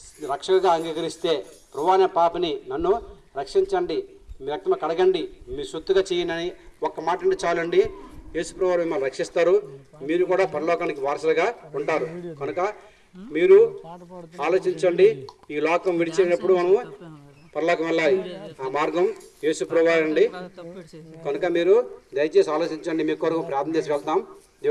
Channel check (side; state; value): both; identical; correlation 1.00